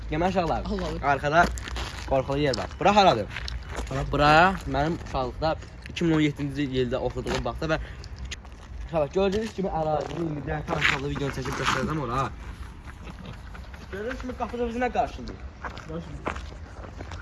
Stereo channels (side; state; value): both; identical; correlation 1.00